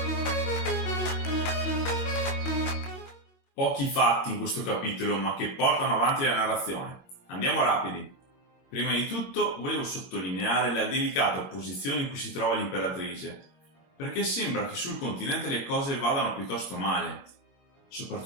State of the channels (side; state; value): right; late; 22 ms